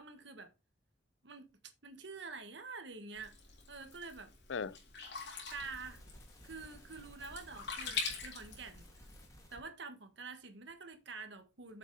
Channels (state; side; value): normal; both; correlation 0.05